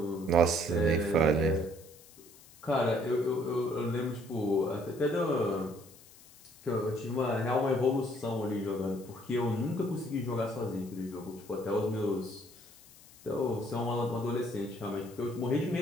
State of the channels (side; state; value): left; noise; hiss, 23 dB below the sound